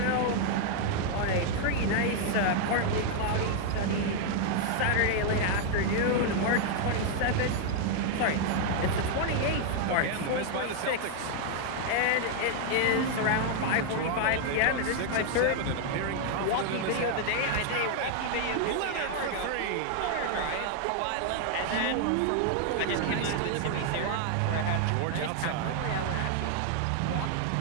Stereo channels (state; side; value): different; both; correlation 0.00